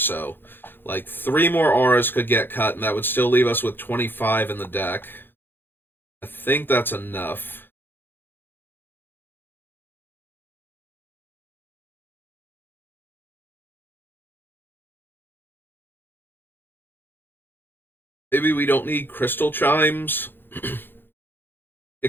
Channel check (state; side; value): late; right; 0.099 ms